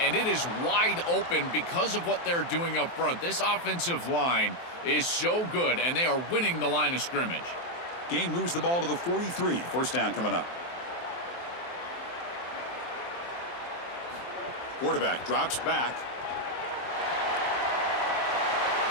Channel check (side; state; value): right; late; 23 ms